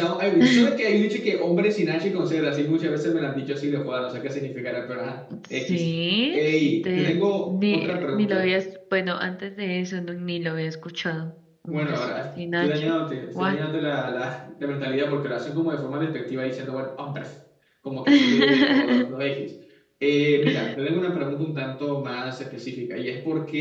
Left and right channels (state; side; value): identical; both; correlation 1.00